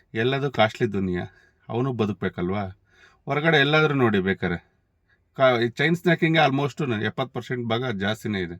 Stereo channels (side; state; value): both; identical; correlation 1.00